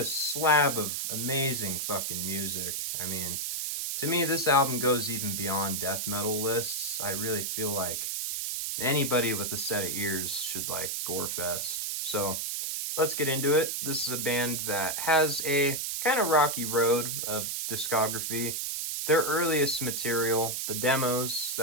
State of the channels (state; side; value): noise; right; hiss, 2 dB below the sound